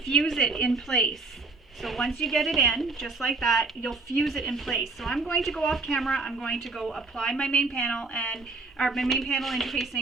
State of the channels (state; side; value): quieter; left; 3.7 dB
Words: fuse it in place. So once you get it in, just like that, you'll fuse it in place. So I'm going to go off camera, I'm going to go apply my main panel and my main panel